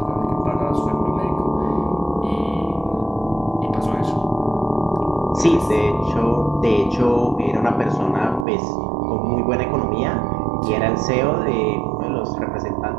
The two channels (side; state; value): left; drops out; at 8.5 s